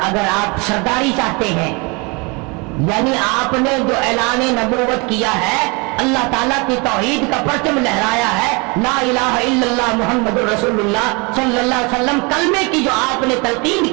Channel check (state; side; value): quieter; left; 29.1 dB